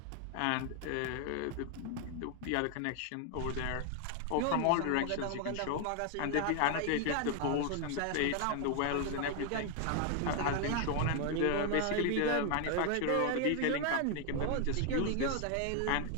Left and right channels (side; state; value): both; different; correlation 0.00